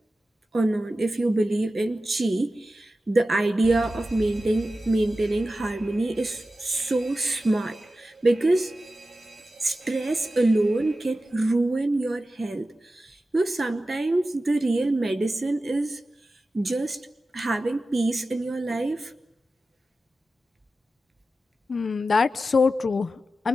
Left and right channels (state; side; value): normal; both; correlation 0.93